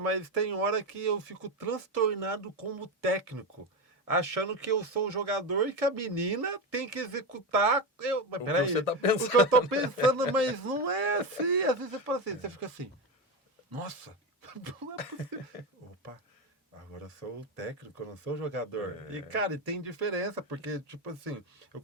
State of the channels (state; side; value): normal; both; correlation 0.15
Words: tem hora que eu fico transtornado como técnico, achando que eu sou o jogador e que a menina tem que executar. Mas o que você peraí, tá o que eu tô pensando? pensando, mas não é assim. Às vezes você fala assim, você fica assim, nossa, não é possível. Opa, agora eu sou o técnico, eu não sou o jogador. E, cara, e tem diferença, porque, tipo assim, eu